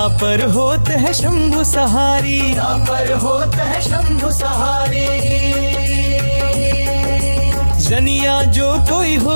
होत है शंभु सहारी। तापर होत है शंभु सहारी। जनिया जो कोई हो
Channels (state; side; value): inverted; both; correlation -1.00